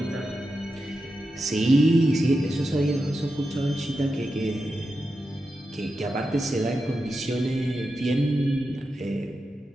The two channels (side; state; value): both; normal; correlation 0.89